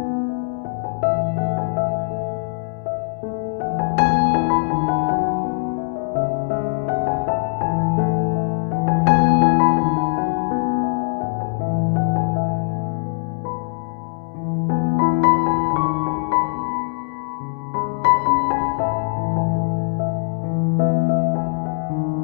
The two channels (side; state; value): right; silent; digital silence